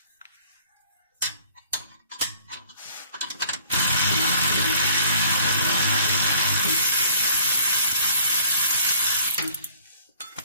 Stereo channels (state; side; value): inverted; both; correlation -0.55